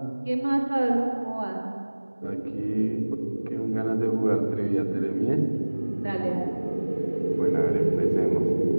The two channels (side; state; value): both; inverted; correlation -1.00